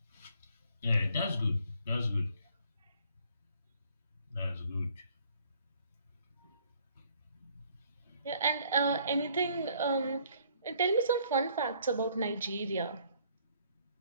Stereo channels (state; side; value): inverted; both; correlation -0.62